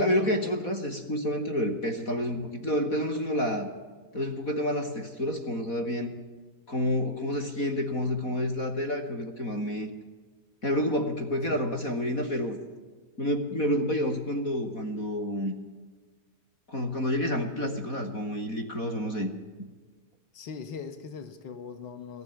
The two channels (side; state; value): right; late; 4.1 ms